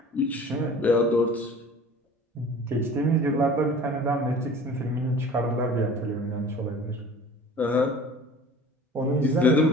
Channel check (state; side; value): normal; both; correlation 0.44